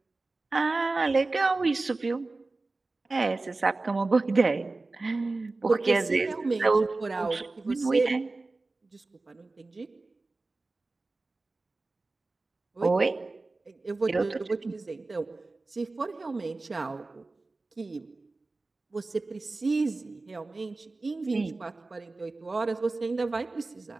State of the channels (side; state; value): left; quieter; 3.4 dB